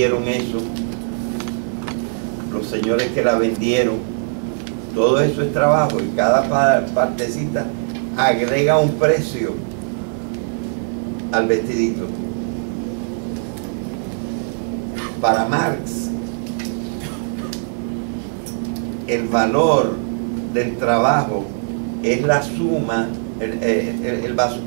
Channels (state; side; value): silent; left; 59 dB below the other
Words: eso, los señores que la vendieron, todo eso es trabajo, y cada partecita agrega un precio al vestidito. Para Marx, el valor del trabajo es la suma,